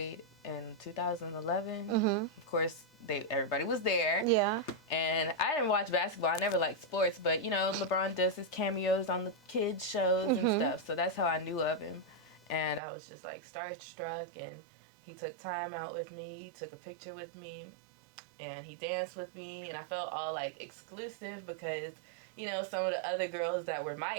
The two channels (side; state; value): left; drops out; at 12.8 s